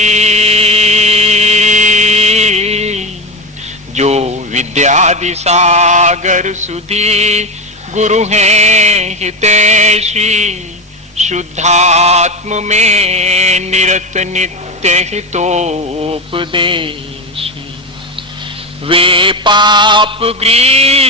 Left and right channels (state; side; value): normal; both; correlation 0.19